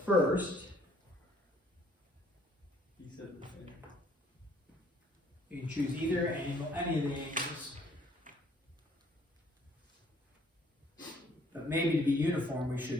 first. he said the same. You can choose either angle, any of the angles. But maybe to be uniform, we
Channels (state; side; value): normal; both; correlation 0.61